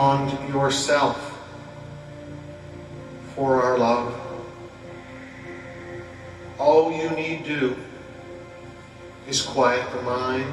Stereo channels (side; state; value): both; identical; correlation 1.00